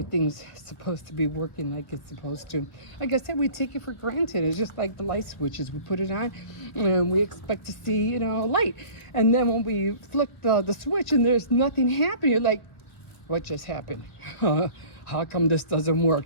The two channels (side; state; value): right; late; 1.2 ms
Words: supposed to be working like it's supposed to. Like I said, we take it for granted. It's just like the light switches. We put it on and we expect to see, you know, light. And then when we flick the switch and there's nothing happening, you're like, what just happened? How come this doesn't